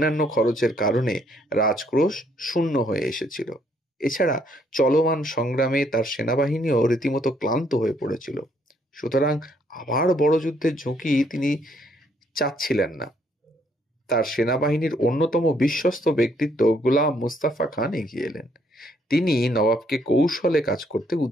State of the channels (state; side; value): normal; both; correlation 0.69